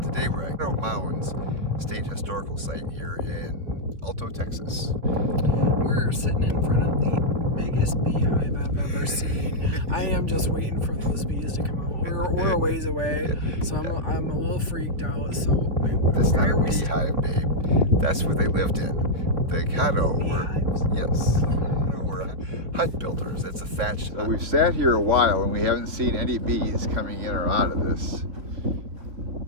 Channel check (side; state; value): left; late; 3.7 ms